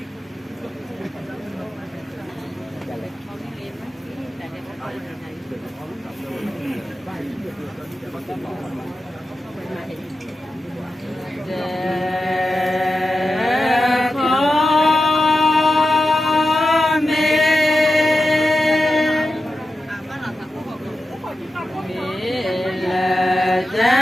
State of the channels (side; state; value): both; normal; correlation 0.91